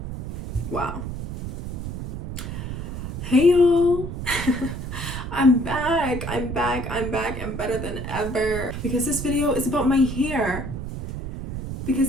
Wow. Hey y'all. I'm back. I'm better than ever. Because this video is about my hair.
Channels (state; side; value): noise; right; rumble, 6 dB below the sound